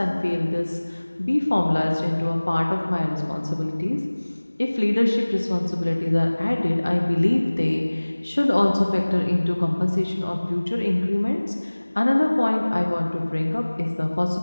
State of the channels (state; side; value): inverted; both; correlation -1.00